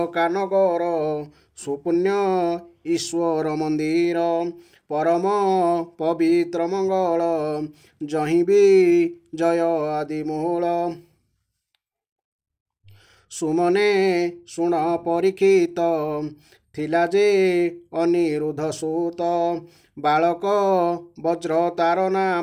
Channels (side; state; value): both; identical; correlation 1.00